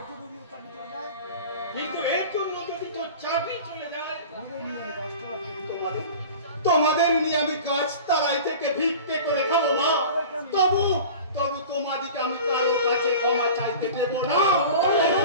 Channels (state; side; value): inverted; both; correlation -0.37